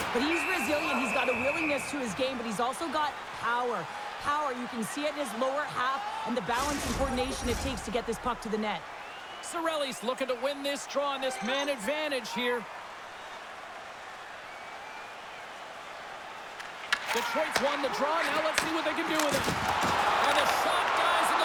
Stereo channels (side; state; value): both; identical; correlation 1.00